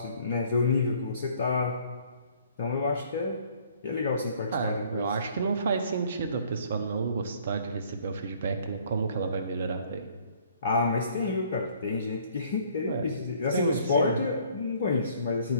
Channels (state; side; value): inverted; both; correlation -0.59